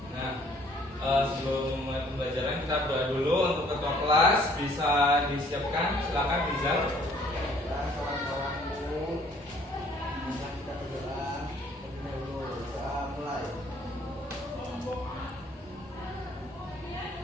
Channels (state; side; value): normal; both; correlation 0.59